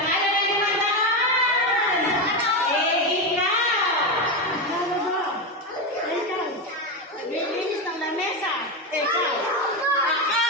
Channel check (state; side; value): normal; both; correlation 0.12